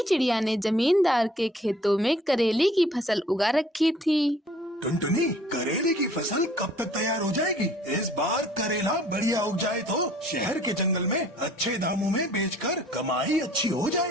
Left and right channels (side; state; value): both; normal; correlation 0.55